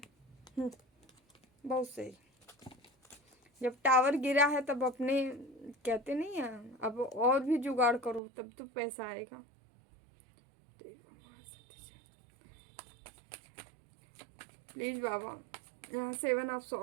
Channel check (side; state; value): left; drops out; at 8.2 s